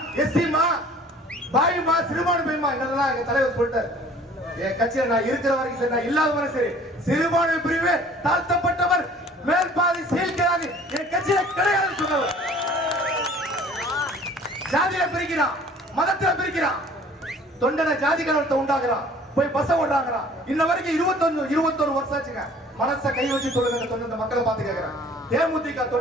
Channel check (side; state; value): both; normal; correlation 0.51